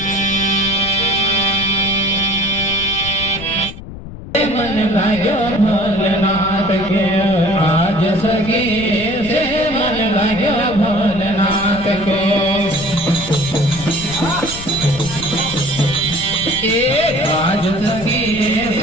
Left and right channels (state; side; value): noise; left; rumble, 12 dB below the sound